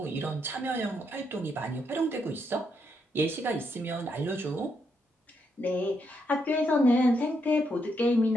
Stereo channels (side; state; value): both; normal; correlation 0.78